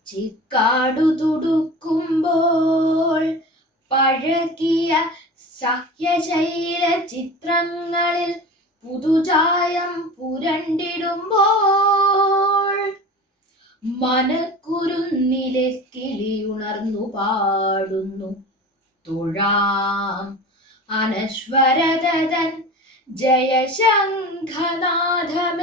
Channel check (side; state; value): both; normal; correlation 0.34